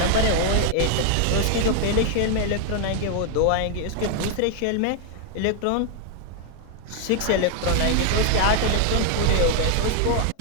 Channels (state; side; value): different; both; correlation 0.00